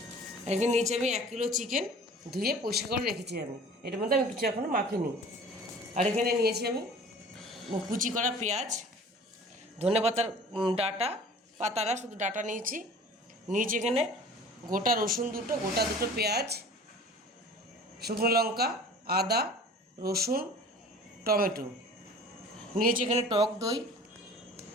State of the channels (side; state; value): both; normal; correlation 0.44